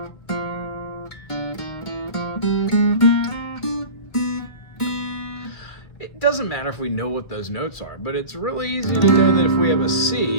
it doesn't matter if we know what those notes are, but it's really easy to know that if we have a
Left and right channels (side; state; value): right; late; 2.3 ms